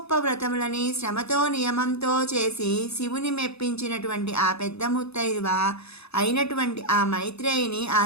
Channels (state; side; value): late; right; 0.79 ms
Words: వ్రతములని శ్రమతో నియమంతో చేసి శివుని మెప్పించినటువంటి ఆ పెద్ద ముత్తైదువ అయినటువంటి ఆ మైత్రేయిని